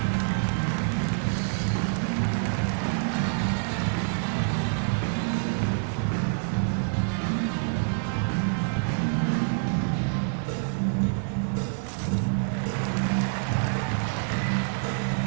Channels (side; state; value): left; silent; digital silence